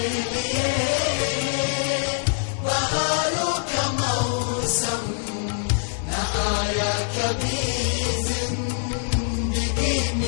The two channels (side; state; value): right; silent; digital silence